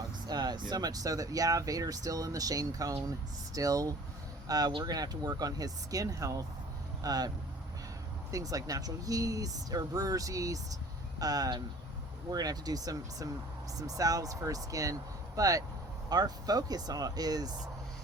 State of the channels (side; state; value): both; normal; correlation 0.48